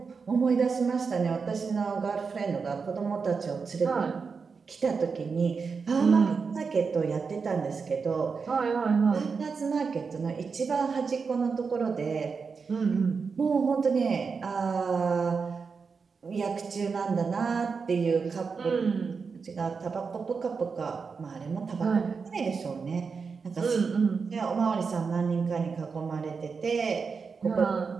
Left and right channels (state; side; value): quieter; left; 5.2 dB